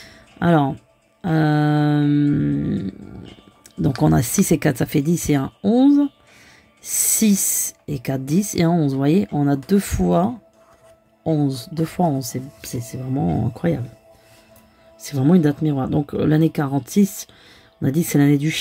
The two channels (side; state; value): both; identical; correlation 1.00